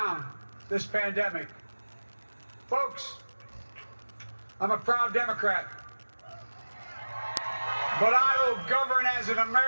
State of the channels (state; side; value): inverted; both; correlation -1.00